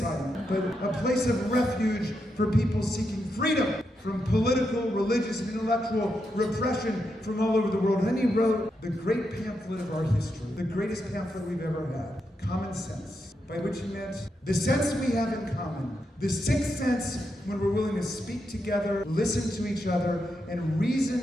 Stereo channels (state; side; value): normal; both; correlation 0.84